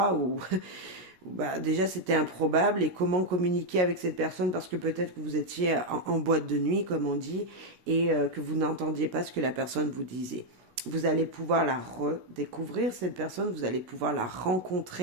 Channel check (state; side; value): late; left; 17 ms